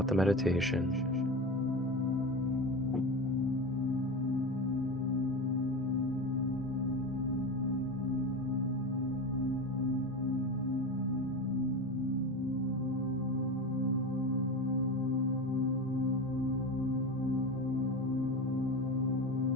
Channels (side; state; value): both; normal; correlation 0.23